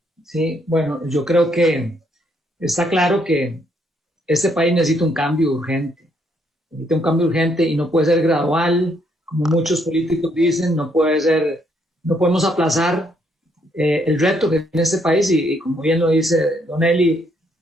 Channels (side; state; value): both; normal; correlation 0.72